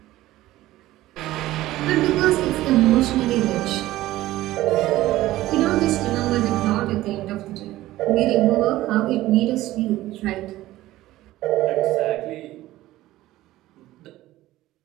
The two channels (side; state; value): left; quieter; 16.0 dB